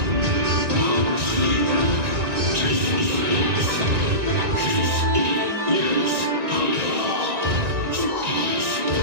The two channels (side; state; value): left; late; 1.9 ms